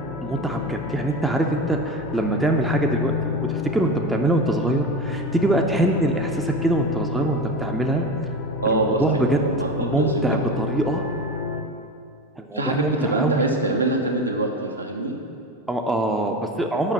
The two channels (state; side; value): normal; both; correlation 0.25